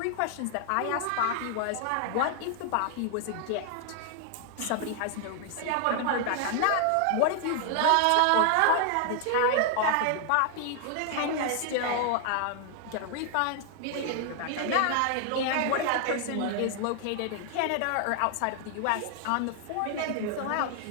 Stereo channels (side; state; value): both; different; correlation 0.00